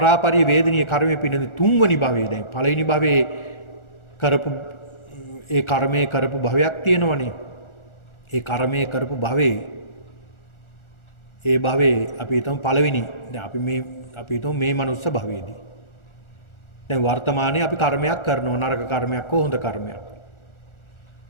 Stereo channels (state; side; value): late; right; 1.4 ms